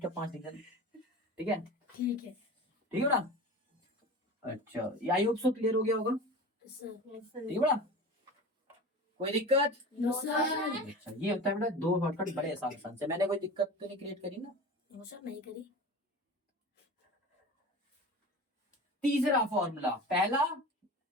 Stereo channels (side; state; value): both; normal; correlation 0.34